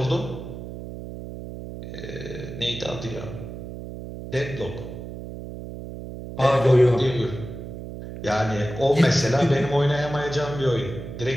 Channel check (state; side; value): noise; right; hum, 10 dB below the sound